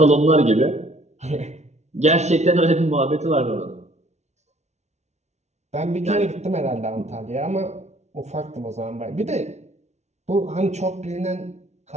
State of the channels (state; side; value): late; left; 0.32 ms